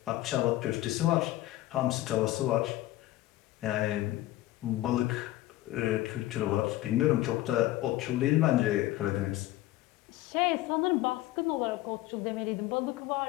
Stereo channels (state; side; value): quieter; right; 16.1 dB